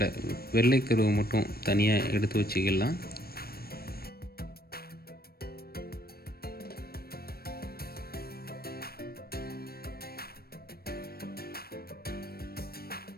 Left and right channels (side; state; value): right; late; 0.44 ms